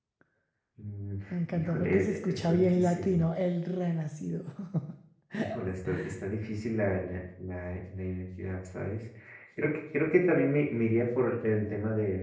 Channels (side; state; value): both; identical; correlation 1.00